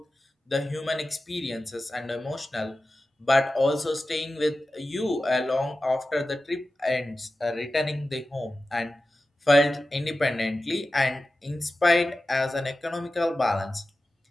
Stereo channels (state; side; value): normal; both; correlation 0.94